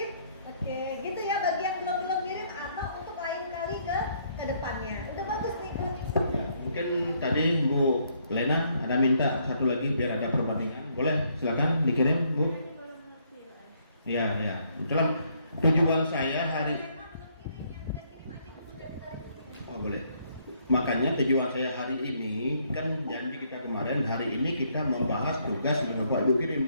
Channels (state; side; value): inverted; both; correlation -0.69